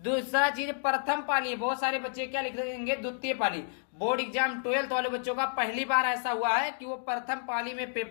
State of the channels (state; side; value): silent; right; digital silence